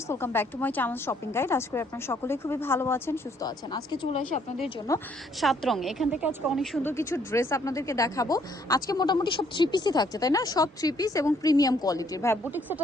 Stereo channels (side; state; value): both; normal; correlation 0.66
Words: welcome back to my channel shopping guide. আজকে আপনারা সকলেই খুবই ভালো আছেন, সুস্থ আছেন। আজকে চলে আসি আপনাদের জন্য 7 রঙে। এখান থেকে আজকে অনেক সুন্দর কিছু ড্রেস আপনাদেরকে দেখাবো। আজকে মোটামুটি সব 3 পিসই থাকছে, তাই না? সব 3 পিস এবং প্রিমিয়াম কোয়ালিটির। ভাই বুটিক